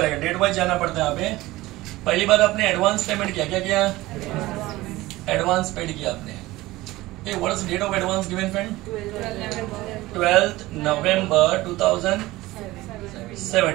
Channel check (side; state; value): left; quieter; 18.6 dB